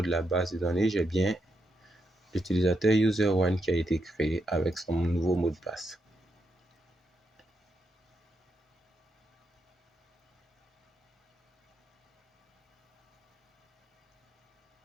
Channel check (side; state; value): both; normal; correlation 0.82